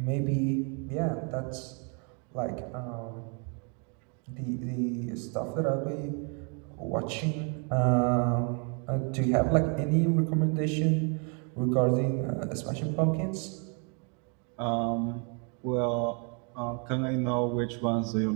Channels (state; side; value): quieter; left; 37.8 dB